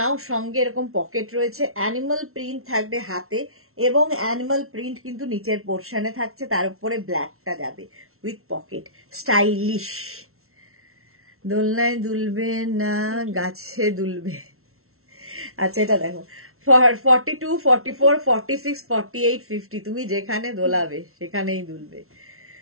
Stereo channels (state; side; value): late; left; 0.62 ms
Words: সঙ্গে এরকম পকেট রয়েছে, অ্যানিমাল প্রিন্ট থাকবে হাতে এবং অ্যানিমাল প্রিন্ট কিন্তু নিচের পোর্শনে থাকছে, তার উপরে ব্ল্যাকটা যাবে উইথ পকেট। স্টাইলিশ, দোলনায় দুলবে না গাছে দুলবে। আচ্ছা এটা দেখো 42, 44, 46, 48, 50 তুমি যেখানে দোলাবে সেখানেই দুলবে।